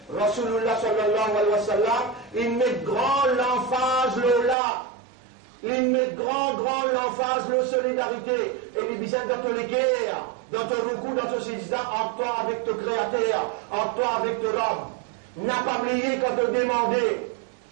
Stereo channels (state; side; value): drops out; left; at 4.5 s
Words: Rasulullah sallallahu alayhi wa sallam, il met grand l'emphase là. Il met grand l'emphase la solidarité. Et il dit dans ton l'équerre, dans ton recours, dans ton sejda, en toi avec ton créateur, en toi avec ton homme. N'a pas oublié quand te demandé.